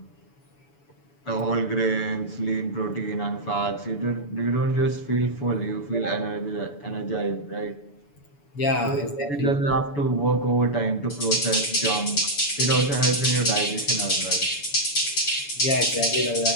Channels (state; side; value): late; right; 7.0 ms